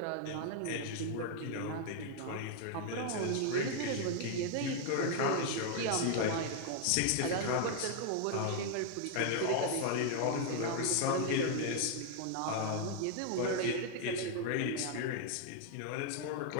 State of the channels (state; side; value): different; both; correlation 0.00